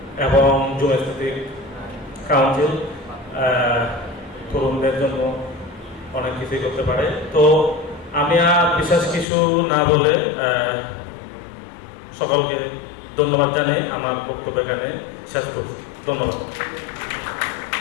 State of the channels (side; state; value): right; drops out; at 9.2 s